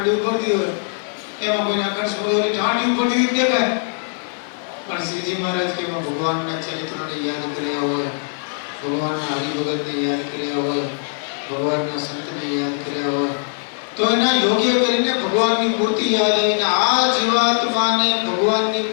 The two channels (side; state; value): right; silent; 65 dB below the other